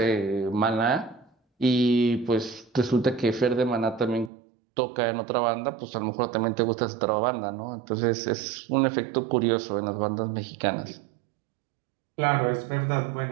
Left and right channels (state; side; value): drops out; left; at 4.3 s